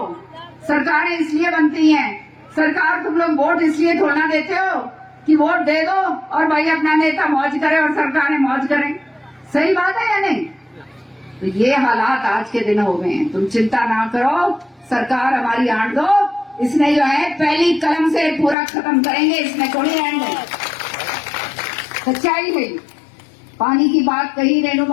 सरकारें इसलिए बनती हैं, सरकार तुम लोग वोट इसलिए थोड़ा देते हो कि वोट दे दो और भाई अपना नेता मौज करे और सरकारें मौज करें। सही बात है या नहीं? तो ये हालात आज के दिन हो गए हैं। तुम चिंता ना करो, सरकार हमारी आंट दो, इसने जो है पहली कलम से पूरा खत्म करेंगे, इसमें कोई एंड नहीं। सच्चाई है। पानी की बात कही रेणु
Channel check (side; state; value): right; drops out; at 18.6 s